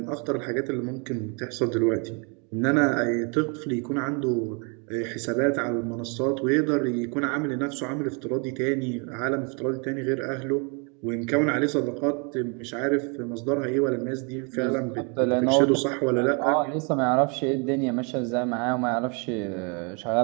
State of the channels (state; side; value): quieter; left; 35.4 dB